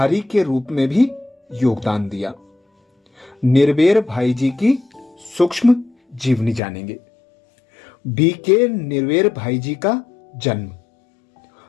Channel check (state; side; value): drops out; right; at 6.6 s